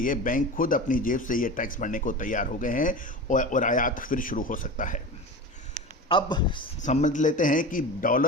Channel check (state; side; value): normal; both; correlation 0.30